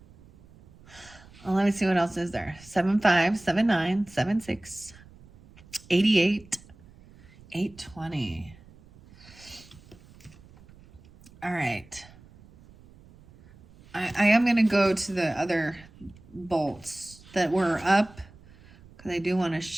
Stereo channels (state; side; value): noise; right; rumble, 24 dB below the sound